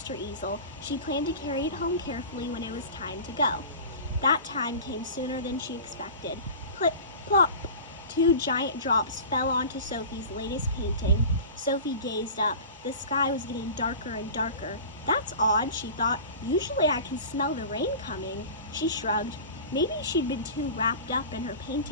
her easel. She planned to carry it home carefully when it was time to go. That time came sooner than she expected. Plip, plop! 2 giant drops fell onto Sophie's latest painting. Sophie gazed up. The sky was getting darker and darker. That's odd, she thought. Usually I can smell the rain coming. She shrugged. Maybe she'd been too wrapped up in her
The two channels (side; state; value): both; inverted; correlation -0.35